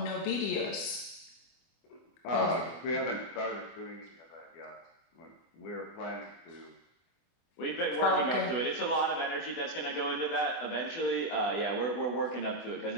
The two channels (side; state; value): right; late; 25 ms